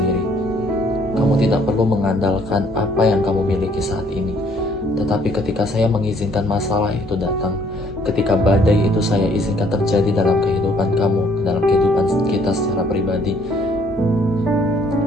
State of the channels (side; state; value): both; normal; correlation 0.63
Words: Kamu tidak perlu mengandalkan apa yang kamu miliki saat ini. Tetapi ketika saya mengizinkan masalah itu datang, ketika badai itu saya izinkan terjadi dalam kehidupan kamu, dalam kehidupan kita secara pribadi,